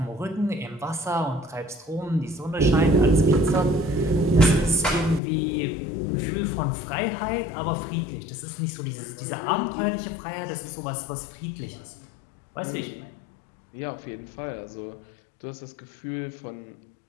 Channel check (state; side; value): drops out; right; at 5.2 s